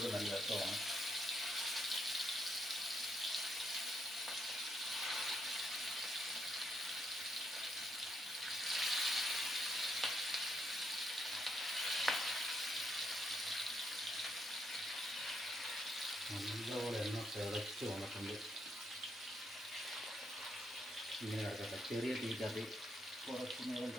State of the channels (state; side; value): normal; both; correlation 0.77